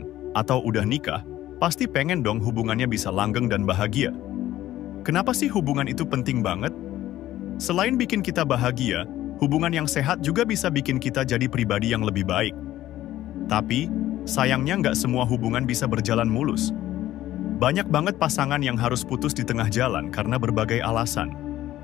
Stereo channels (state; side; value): quieter; right; 14.1 dB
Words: atau udah nikah, pasti pengen dong hubungannya bisa langgeng dan bahagia. Kenapa sih hubungan itu penting banget? Selain bikin kita bahagia, hubungan yang sehat juga bisa bikin kita jadi pribadi yang lebih baik. Tapi, sayangnya nggak semua hubungan bisa berjalan mulus. Banyak banget pasangan yang harus putus di tengah jalan karena berbagai alasan.